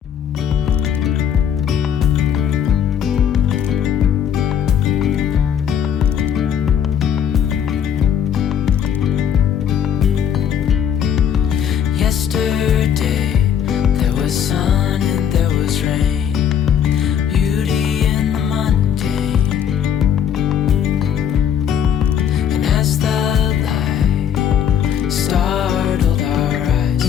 Yesterday there was sun and there was rain, beauty in the mundane. And as the light startled our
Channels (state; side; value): quieter; right; 8.7 dB